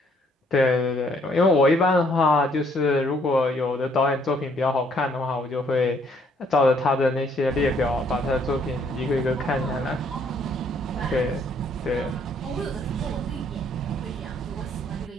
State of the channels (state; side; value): normal; both; correlation 0.66